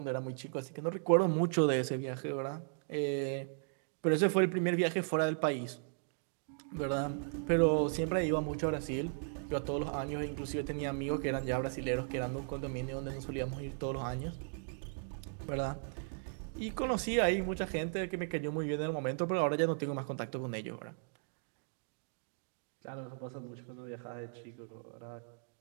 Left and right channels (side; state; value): left; silent; digital silence